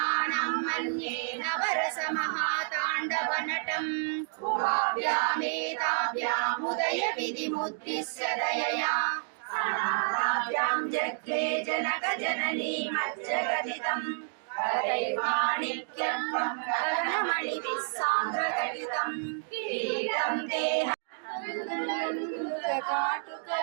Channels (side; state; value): left; silent; digital silence